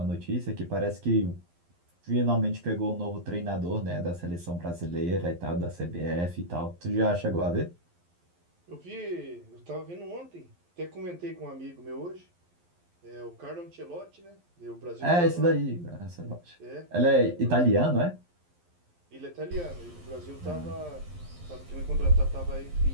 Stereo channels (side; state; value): left; late; 11 ms